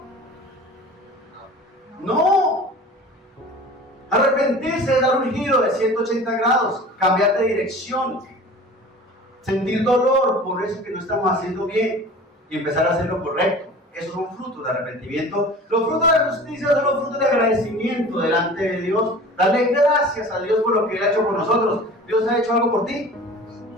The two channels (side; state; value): both; normal; correlation 0.41